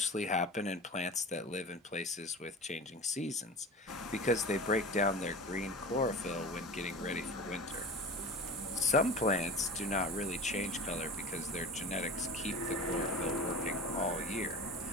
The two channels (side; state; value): both; normal; correlation 0.33